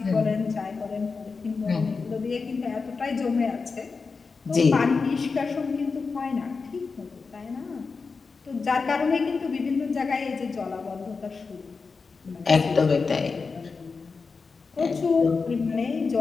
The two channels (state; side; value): quieter; right; 4.7 dB